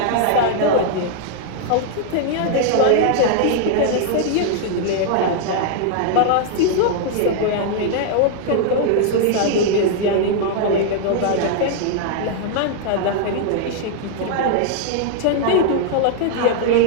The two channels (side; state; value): both; different; correlation -0.01